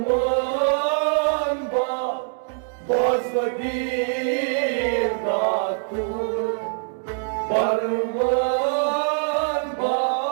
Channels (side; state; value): left; silent; digital silence